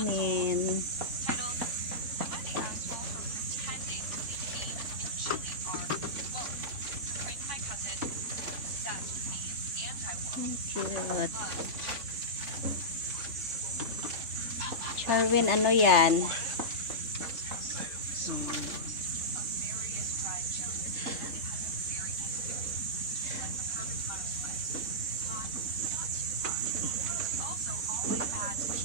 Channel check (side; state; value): left; late; 3.3 ms